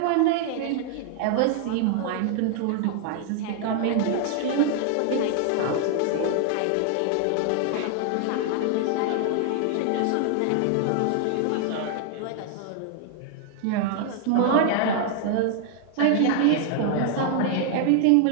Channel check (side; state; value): both; different; correlation 0.00